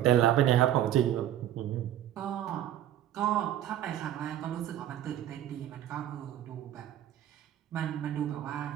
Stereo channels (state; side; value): quieter; left; 11.8 dB